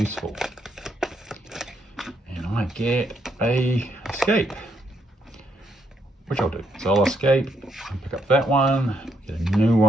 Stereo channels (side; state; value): both; normal; correlation 0.75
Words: And I get a escape, which I'll do. So I'll escape and pick up that one, get a new